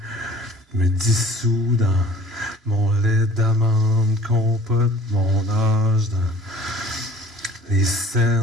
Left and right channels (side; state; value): both; normal; correlation 0.49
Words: me dissous dans mon lait d'amande, compote mon âge dans les